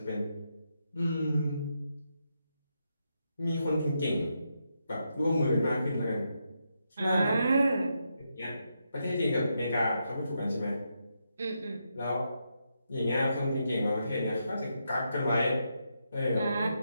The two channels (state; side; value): inverted; both; correlation -0.83